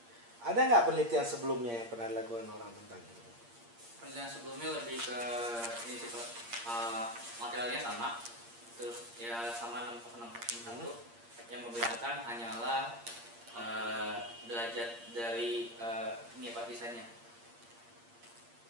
Ada nggak penelitian sebelumnya yang pernah dilakukan orang tentang ini? Penelitian sebelumnya lebih ke ini sih Pak. Materialnya sama, terus ya sama 601. Yang membedakan hanyalah derajat dari ini Pak desainnya.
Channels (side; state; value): left; late; 8.6 ms